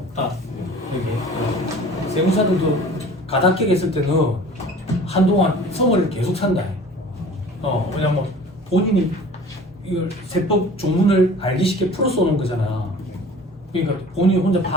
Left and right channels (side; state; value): both; normal; correlation 0.44